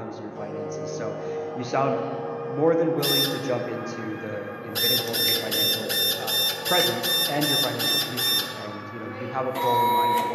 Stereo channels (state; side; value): identical; both; correlation 1.00